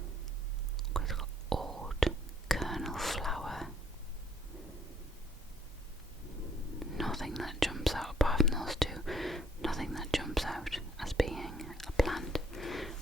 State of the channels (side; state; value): both; normal; correlation 0.65